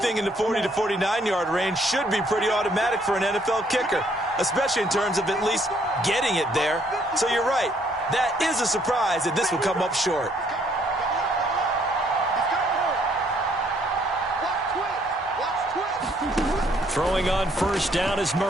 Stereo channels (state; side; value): normal; both; correlation 0.67